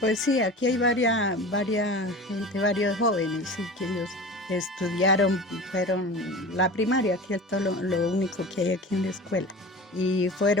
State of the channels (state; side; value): normal; both; correlation 0.35